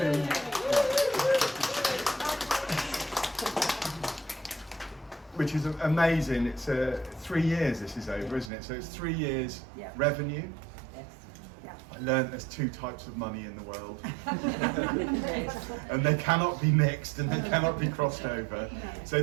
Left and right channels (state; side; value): drops out; left; at 8.5 s